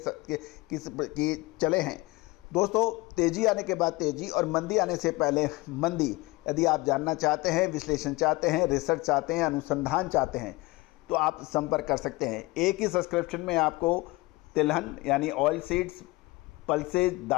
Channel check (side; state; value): right; quieter; 22.0 dB